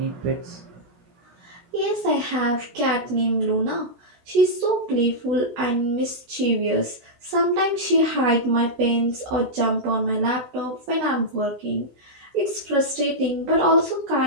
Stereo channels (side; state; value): left; late; 16 ms